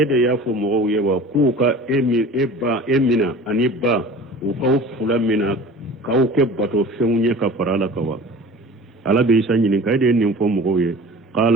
ya fo mo yewa kuka emina aniba ukaw fula mina kaw ke bato fenye ka farala kawa ala be isa nyini kayde nin fo mugo ye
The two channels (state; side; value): normal; both; correlation 0.41